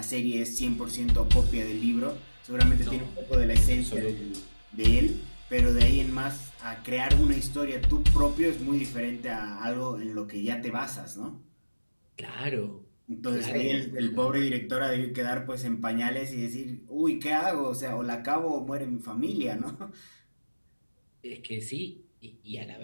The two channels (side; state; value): both; inverted; correlation -1.00